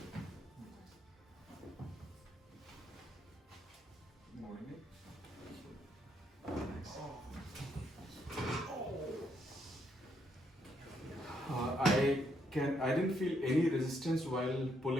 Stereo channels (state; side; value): normal; both; correlation 0.75